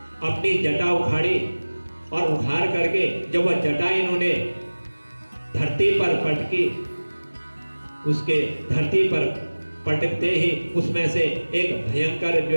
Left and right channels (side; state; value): both; inverted; correlation -1.00